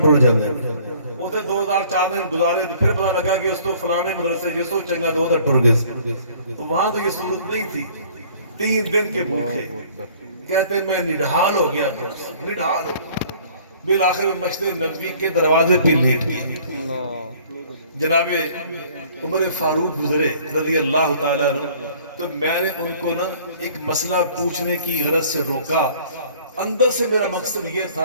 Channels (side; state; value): both; inverted; correlation -0.54